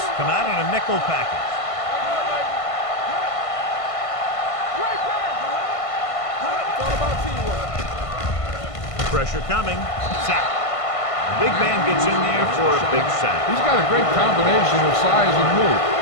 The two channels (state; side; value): late; right; 1.5 ms